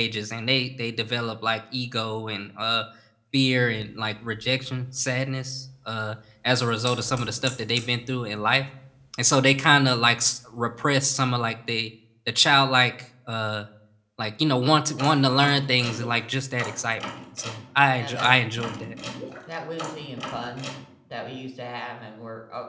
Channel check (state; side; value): identical; both; correlation 1.00